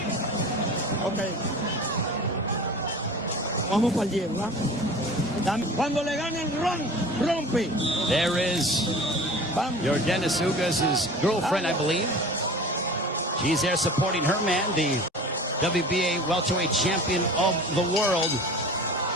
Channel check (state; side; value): normal; both; correlation 0.39